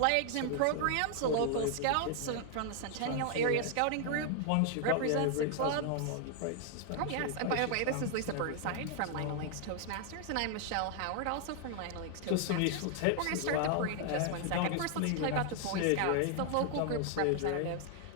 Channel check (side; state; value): both; different; correlation 0.00